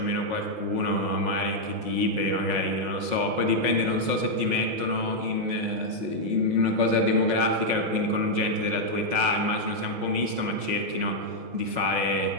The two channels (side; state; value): left; late; 5.5 ms